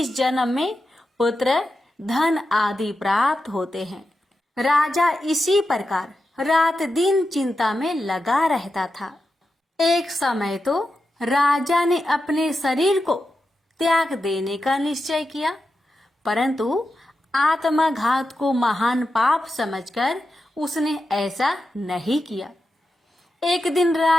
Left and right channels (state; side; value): normal; both; correlation 0.89